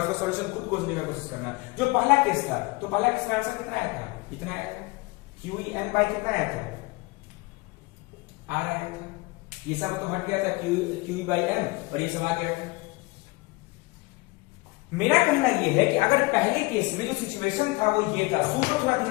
सॉल्यूशन खुद खोजने की कोशिश करना। जो पहला केस था, तो पहला केस का आंसर कितना आया था, इतना आया था, क्यू एम बाई कितना आया था, आर आया था। ये सब तो हट गया था, क्यू बाई एम, और ये सब आ गया था। मेरा कहना यह है कि अगर पहले केस में जो सिचुएशन था वो ये था, सोचो थोड़ा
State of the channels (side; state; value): right; quieter; 24.2 dB